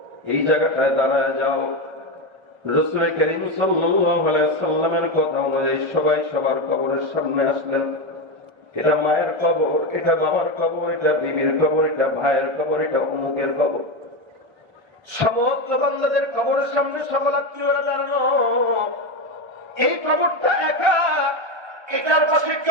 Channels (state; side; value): late; left; 1.3 ms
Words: এই জায়গাটায় দাঁড়ায় যাও। রাসূল করিম সাল্লাল্লাহু আলাইহি ওয়াসাল্লামের কথা অনুযায়ী সবাই সবার কবরের সামনে আসলেন। এটা মায়ের কবর, এটা বাবার কবর, এটা বিবির কবর, এটা ভাইয়ের কবর, এটা অমুকের কবর। সমস্ত বান্দাদের কবরের সামনে সকল আত্মীয়রা দাঁড়ানো। এই কবরটা একা, এটার পাশে